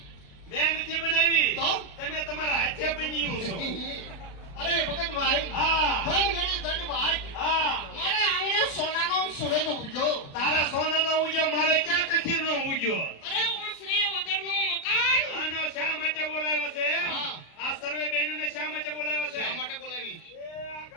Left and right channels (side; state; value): right; late; 36 ms